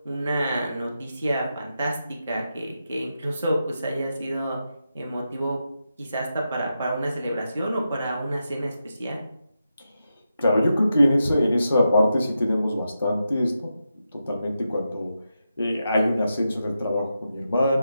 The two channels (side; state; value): both; inverted; correlation -0.87